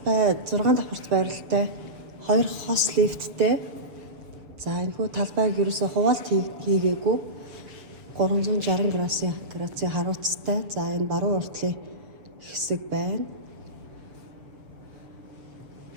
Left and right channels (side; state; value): left; late; 7.1 ms